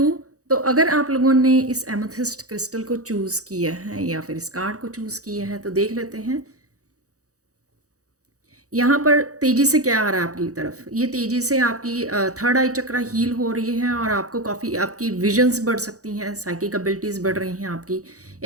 तो अगर आप लोगों ने इस एमेथिस्ट क्रिस्टल को चूज़ किया है या फिर इस कार्ड को चूज़ किया है, तो देख लेते हैं यहाँ पर तेज़ी से क्या आ रहा है आपकी तरफ। ये तेज़ी से आपकी थर्ड आई चक्रा हील हो रही है, और आपको काफ़ी आपकी विजन्स बढ़ सकती हैं, साइकिक एबिलिटीज़ बढ़ रही हैं आपकी।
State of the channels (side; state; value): left; late; 0.66 ms